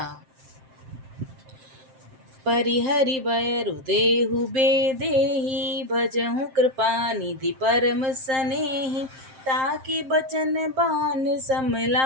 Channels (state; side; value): late; left; 7.6 ms